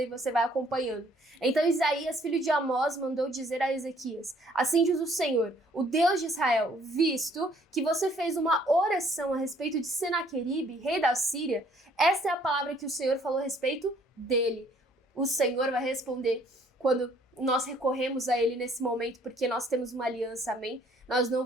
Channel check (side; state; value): both; normal; correlation 0.62